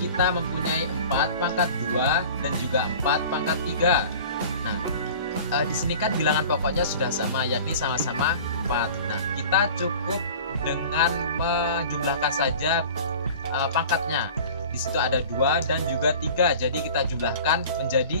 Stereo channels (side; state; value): both; inverted; correlation -0.41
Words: mempunyai 4 pangkat 2 dan juga 4 pangkat 3. Nah, di sini kan bilangan pokoknya sudah sama, yakni sama-sama 4. Nah, kita cukup dengan menjumlahkan saja pangkatnya. Di situ ada 2 dan juga 3, jadi kita jumlahkan